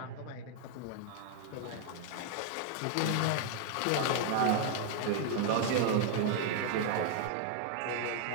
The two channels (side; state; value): both; different; correlation 0.00